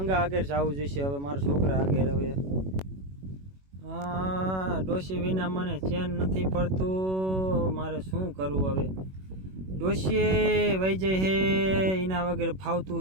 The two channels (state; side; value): late; left; 21 ms